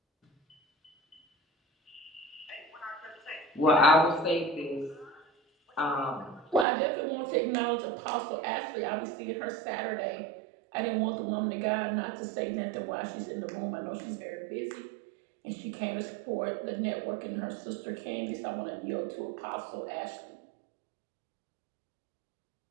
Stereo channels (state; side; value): drops out; left; at 6.7 s